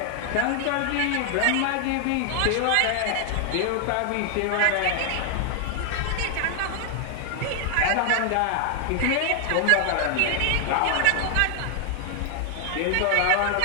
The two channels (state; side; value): different; both; correlation 0.00